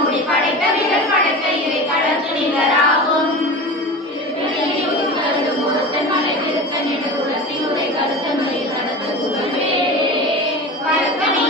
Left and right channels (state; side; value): normal; both; correlation 0.31